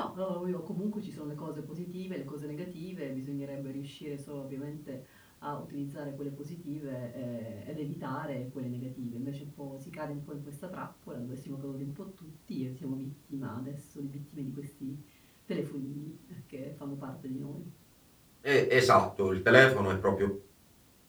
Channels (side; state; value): both; identical; correlation 1.00